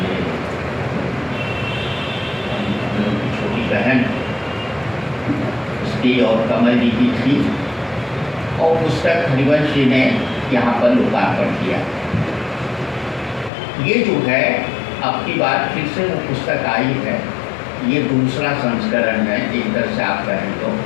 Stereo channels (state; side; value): drops out; right; at 13.5 s